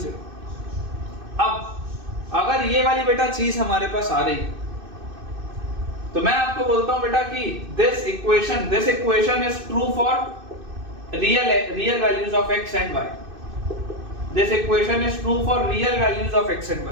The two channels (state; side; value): late; left; 2.6 ms